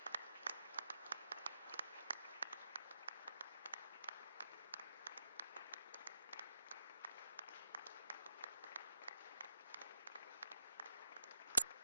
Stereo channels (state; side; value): inverted; both; correlation -0.85